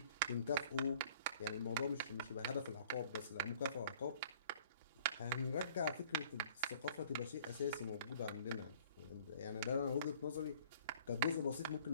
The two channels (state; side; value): inverted; both; correlation -0.53